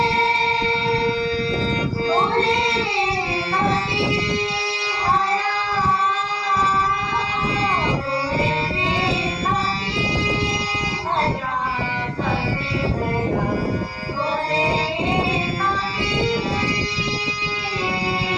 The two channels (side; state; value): both; identical; correlation 1.00